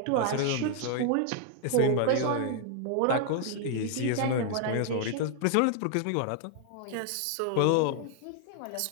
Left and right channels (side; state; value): both; different; correlation 0.00